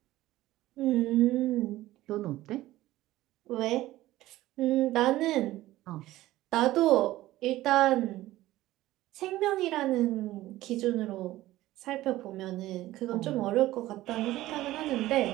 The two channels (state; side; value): quieter; left; 16.1 dB